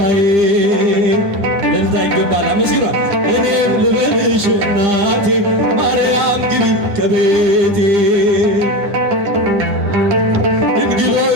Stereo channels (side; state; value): left; late; 10 ms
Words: እልልታ ይገባል። አመስግኗ እኔም ልበልሽ እናቴ ማርያም ግቢ ከቤቴ